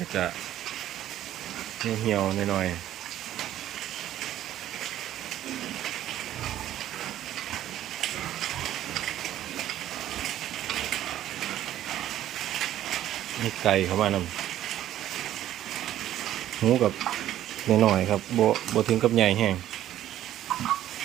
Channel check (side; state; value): left; quieter; 12.5 dB